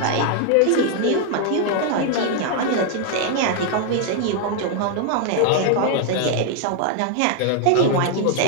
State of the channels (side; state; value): both; different; correlation 0.00